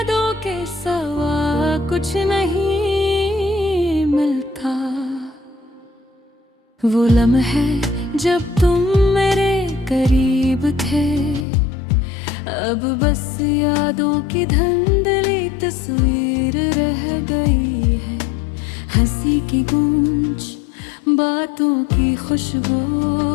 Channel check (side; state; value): right; drops out; at 11.5 s